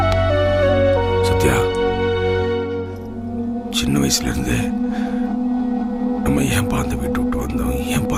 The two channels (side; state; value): both; identical; correlation 1.00